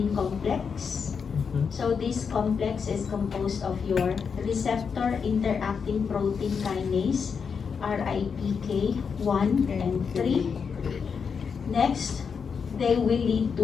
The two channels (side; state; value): right; quieter; 6.1 dB